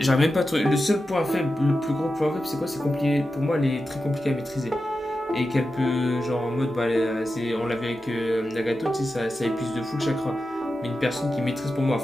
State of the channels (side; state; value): both; normal; correlation 0.91